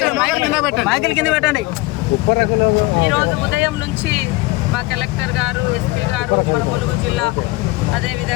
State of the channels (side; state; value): right; quieter; 21.7 dB